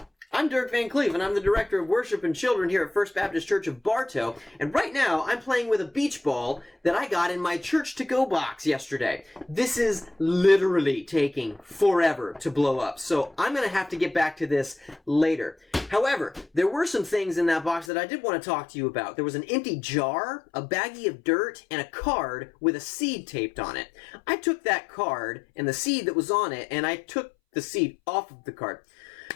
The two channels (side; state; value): right; drops out; at 17.9 s